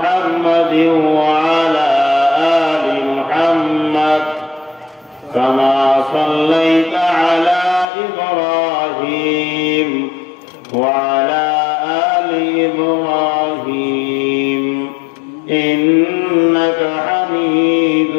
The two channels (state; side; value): drops out; right; at 7.9 s